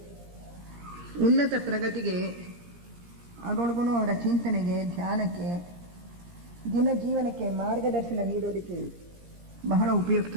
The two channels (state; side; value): late; left; 17 ms